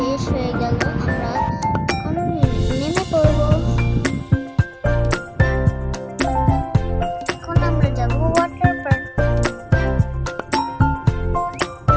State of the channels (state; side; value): identical; both; correlation 1.00